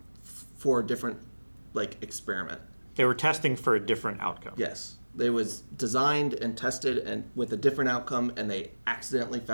for a different experiment. They were testing for a different outcome. Yes. They was designed and tested and with a different outcome, and they accidentally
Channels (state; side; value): inverted; both; correlation -1.00